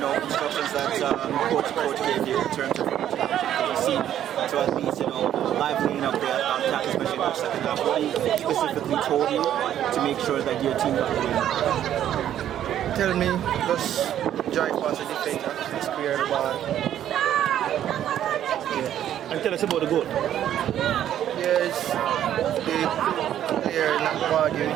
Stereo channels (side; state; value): left; quieter; 11.0 dB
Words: that coach gave you in terms of you see to at least livening up the attack, especially in the second half. What he specifically told you to make sure that your team got the win? Tell me, just drive past the defender, clear the ball. Yeah. And tell us about the goal. Yes, the player not